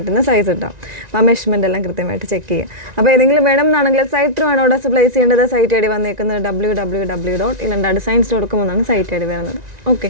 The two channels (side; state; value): left; late; 1.9 ms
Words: സൈസ് ഉണ്ടാവും. അപ്പോൾ ആ മെഷർമെൻറ്റ് എല്ലാം കൃത്യമായിട്ട് ചെക്ക് ചെയ്യുക. അപ്പോൾ ഏതെങ്കിലും വേണം എന്നാണെങ്കിൽ സൈറ്റ് ത്രൂ ആണ് ഓർഡേഴ്സ് പ്ലേസ് ചെയ്യേണ്ടത്. സൈറ്റ് ഐ ഡി വന്നേക്കുന്നത് www.ilandadesigns.com എന്നാണ് സൈറ്റ് ഐ ഡി വരുന്നത്. Okay,